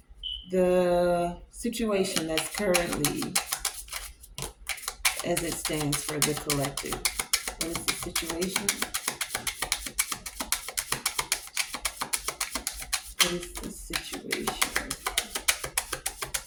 The situation that's currently as it stands for the collective. What is the situation? What is the situation?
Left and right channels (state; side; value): identical; both; correlation 1.00